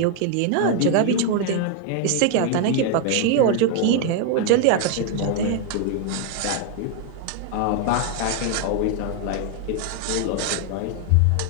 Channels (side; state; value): both; different; correlation 0.00